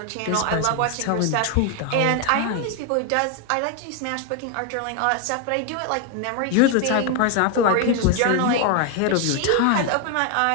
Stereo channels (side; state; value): both; different; correlation 0.01